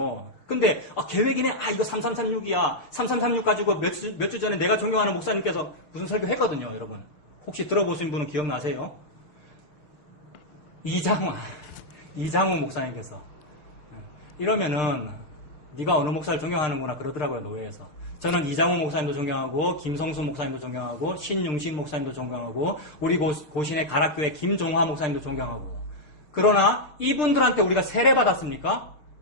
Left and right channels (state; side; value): late; right; 6.7 ms